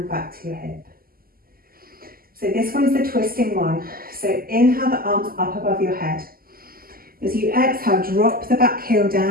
back to your hip. So this one's the twisting one. So inhale the arms up above your head. As you exhale, drop the back heel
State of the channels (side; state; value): left; late; 0.42 ms